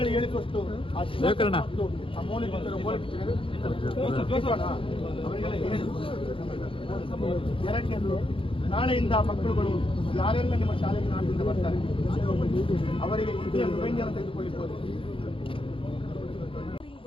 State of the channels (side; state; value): right; late; 0.26 ms